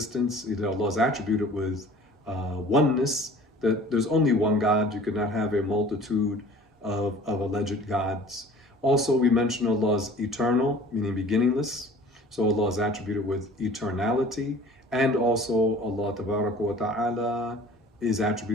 that Allah is attributed with oneness, that there's only one God. You could not have a multitude of alleged gods. Also, we mentioned Allah is eternal, meaning beginningless. So Allah is attributed with eternality. And also Allah Tabaraka wa Ta'ala is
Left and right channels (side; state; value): both; normal; correlation 0.46